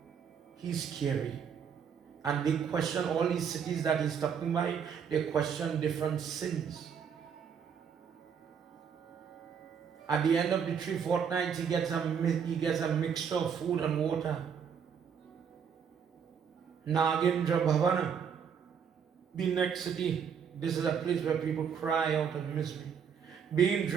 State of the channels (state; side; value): quieter; left; 7.2 dB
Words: he's scary. And they question all these cities that he's talking by, they question different sins. At the end of the 3 fortnights, he gets a mixture of food and water. Nagendra Bhavana, the next city. This is a place where people cry out in misery. Being